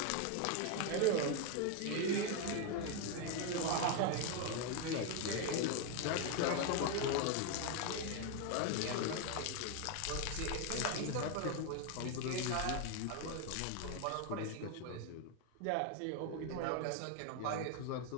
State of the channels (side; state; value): both; different; correlation 0.01